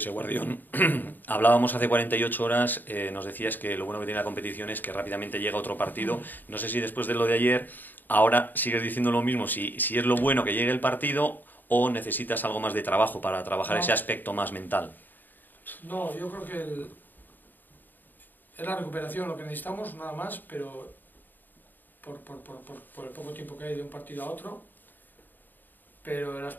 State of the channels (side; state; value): right; late; 0.090 ms